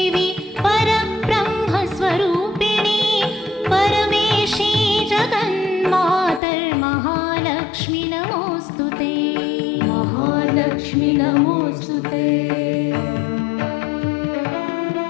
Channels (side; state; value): right; drops out; at 6.4 s